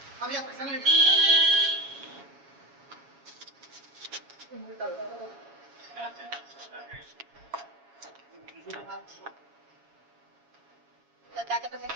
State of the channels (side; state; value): left; late; 7.2 ms